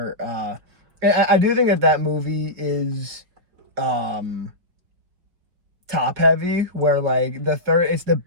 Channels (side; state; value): left; late; 5.4 ms